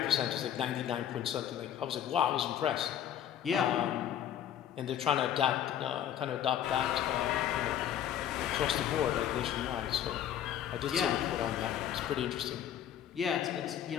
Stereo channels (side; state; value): right; quieter; 10.3 dB